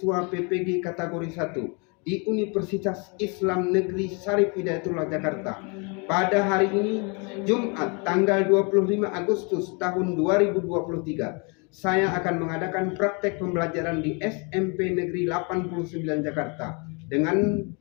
PPG kategori 1 di Universitas Islam Negeri Syarif Hidayatullah Jakarta. Pada hari ini, Jumat tanggal 25 Agustus tahun 2023, saya akan mengadakan praktek pembelajaran di SMP Negeri 89 Jakarta dengan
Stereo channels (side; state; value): right; quieter; 33.3 dB